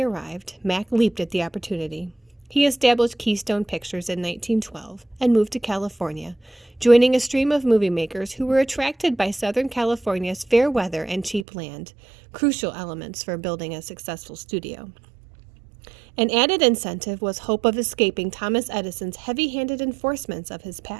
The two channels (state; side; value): drops out; left; at 11.5 s